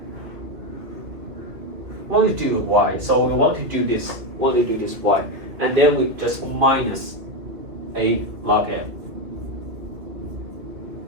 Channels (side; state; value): left; late; 2.5 ms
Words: We want to do y, so we want to do this. Y, and then we just minus a log n.